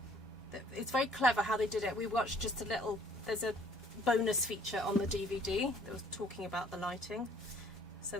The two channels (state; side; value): normal; both; correlation 0.58